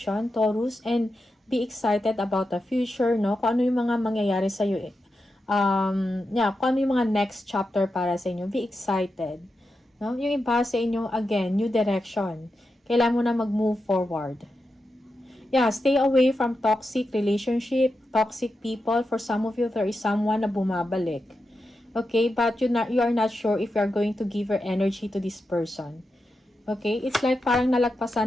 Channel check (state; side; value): normal; both; correlation 0.88